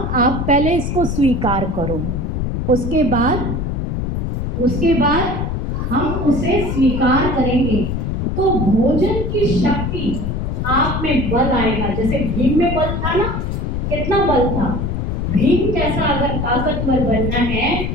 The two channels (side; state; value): left; noise; rumble, 1 dB below the sound